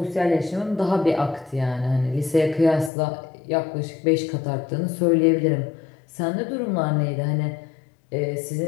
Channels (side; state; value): right; drops out; at 2.9 s